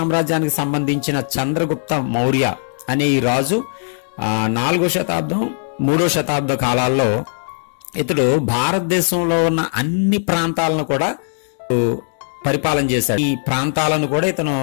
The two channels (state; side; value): silent; right; digital silence